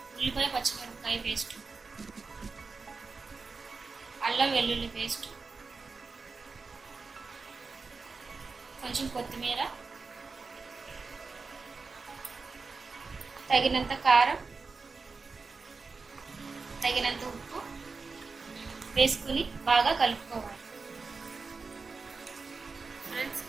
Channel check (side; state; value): left; quieter; 4.4 dB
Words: ఉల్లిపాయ పచ్చిమిరపకాయ పేస్ట్, అల్లం వెల్లుల్లి పేస్ట్, కొంచెం కొత్తిమీర, తగినంత కారం, తగినంత ఉప్పు వేసుకుని బాగా కలుపుకోవాలి. ఫ్రెండ్స్,